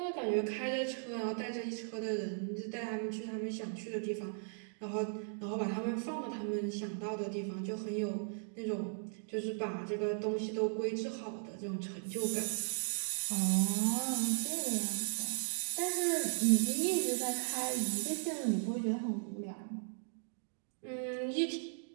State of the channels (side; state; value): left; silent; digital silence